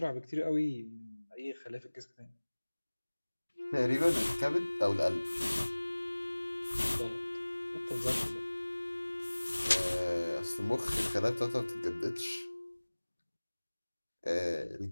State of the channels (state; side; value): inverted; both; correlation -1.00